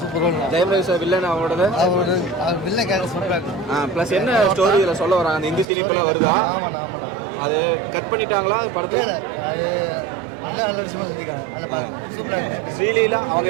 ஜெயம் சார் வில்லன் அவரோட பிளஸ் என்ன ஸ்டோரி இதுல சொல்ல வராங்க அந்த இந்தி சினிமால வருதா அது கட் பண்ணிட்டாங்களா படத்துல அது நல்ல விஷயமா சொல்லிருக்காங்க. அதில் பாருங்க சூப்பராக இருக்கு. ஸ்ரீலீலா அவங்க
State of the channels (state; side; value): drops out; left; at 5.7 s